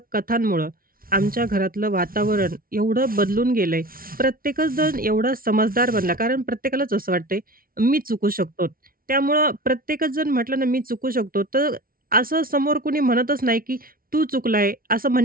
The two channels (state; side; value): late; left; 0.43 ms